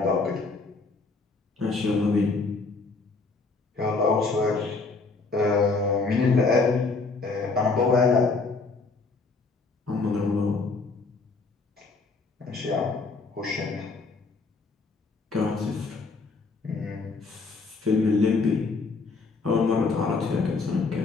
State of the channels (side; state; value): right; quieter; 4.0 dB